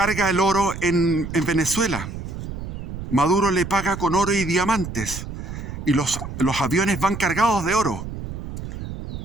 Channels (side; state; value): right; noise; rumble, 8 dB below the sound